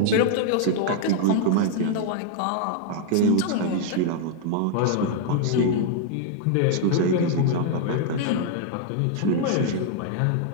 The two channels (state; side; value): different; both; correlation 0.00